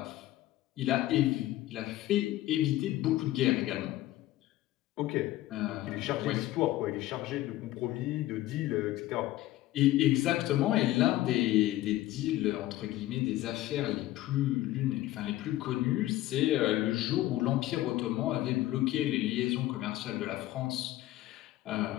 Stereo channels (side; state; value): right; quieter; 15.6 dB